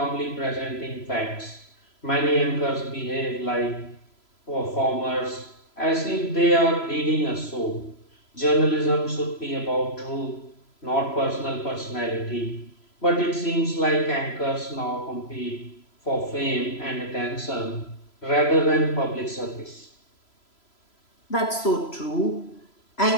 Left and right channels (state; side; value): late; right; 3.0 ms